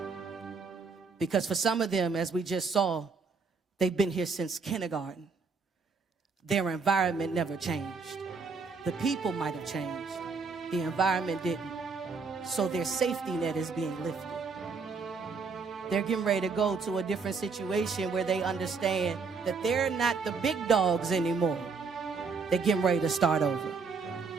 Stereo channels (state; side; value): quieter; left; 4.8 dB